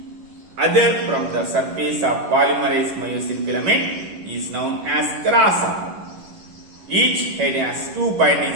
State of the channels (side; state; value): left; late; 11 ms